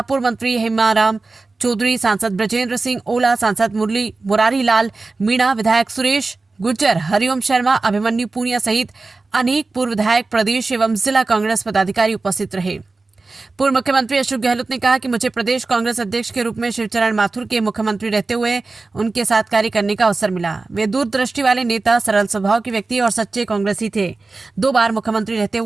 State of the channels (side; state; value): left; quieter; 3.7 dB